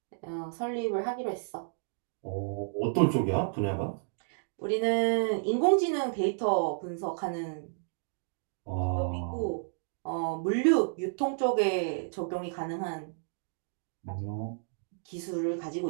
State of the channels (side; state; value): left; silent; digital silence